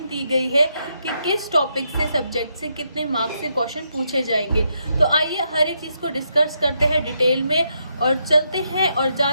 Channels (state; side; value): inverted; both; correlation -0.80